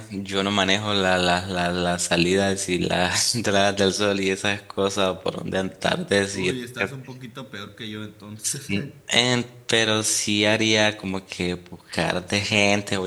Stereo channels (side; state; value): both; identical; correlation 1.00